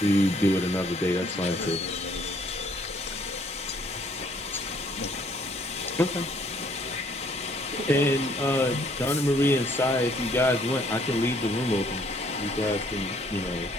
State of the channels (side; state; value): both; normal; correlation 0.63